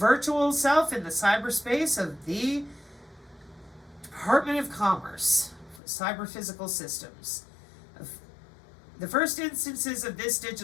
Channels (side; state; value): right; drops out; at 5.8 s